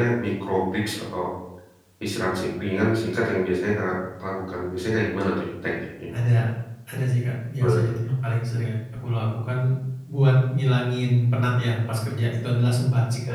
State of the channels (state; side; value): identical; both; correlation 1.00